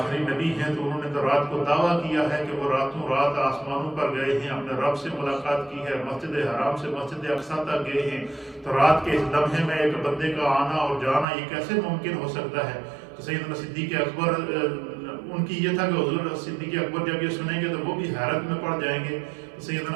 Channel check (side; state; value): left; drops out; at 11.2 s